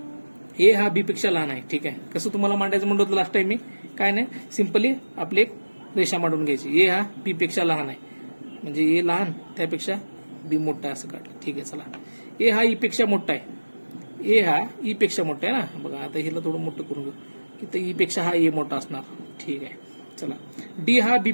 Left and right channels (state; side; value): inverted; both; correlation -1.00